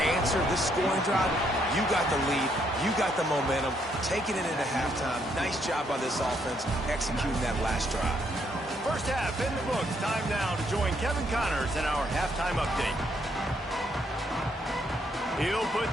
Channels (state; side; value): normal; both; correlation 0.72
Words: answer, this scoring drive, you got the lead, you got the momentum, taking it into halftime. Nice job by this offense executing that last drive. First half in the books. Time now to join Kevin Connors in our halftime update. He'll put